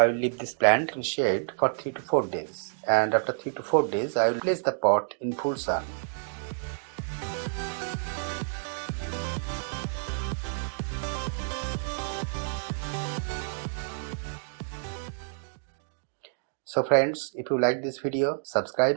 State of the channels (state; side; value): silent; left; digital silence